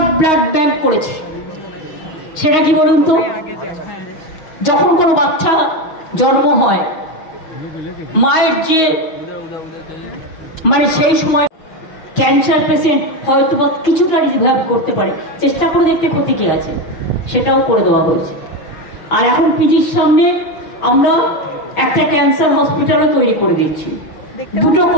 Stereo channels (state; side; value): late; right; 6.3 ms